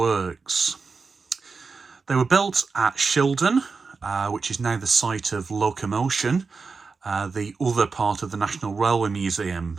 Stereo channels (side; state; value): left; quieter; 4.7 dB